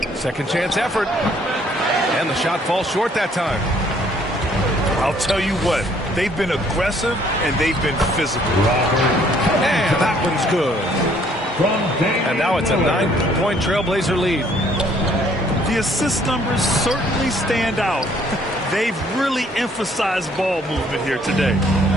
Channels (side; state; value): both; normal; correlation 0.62